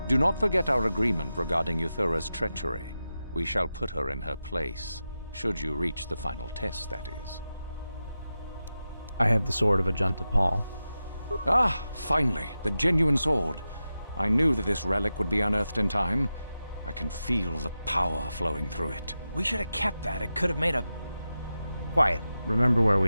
Do not forget our agreement regarding Euthura's treachery. We shall put her in her place, should you reach the final test, that is. I have the sword of Ajunta, Pall. Ah, finally, the genuine sword. I knew that this relic would be unearthed in time. I can feel the power flowing through it. We should have kept that. It could have made a... Quiet. Remember where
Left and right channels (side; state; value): both; inverted; correlation -0.91